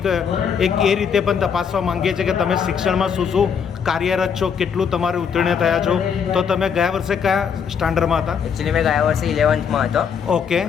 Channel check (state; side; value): quieter; right; 7.0 dB